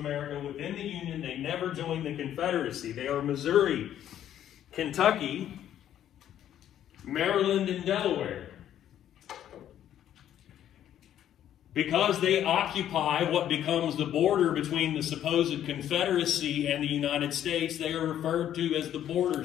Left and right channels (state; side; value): quieter; right; 10.9 dB